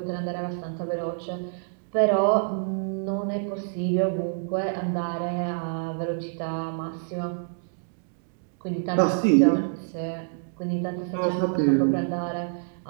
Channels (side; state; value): left; silent; digital silence